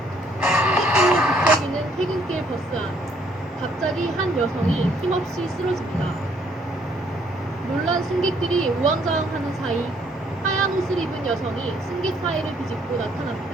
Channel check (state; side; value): normal; both; correlation 0.66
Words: 승객들이 북적이는 퇴근길 버스 안. 갑자기 한 여성이 힘없이 쓰러집니다. 놀란 승객들이 우왕좌왕하는 사이 하얀 옷을 입은 여성이 승객 사이를 비집고